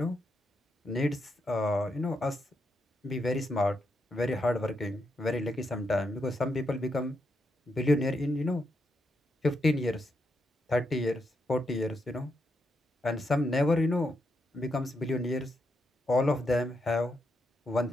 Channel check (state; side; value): normal; both; correlation 0.81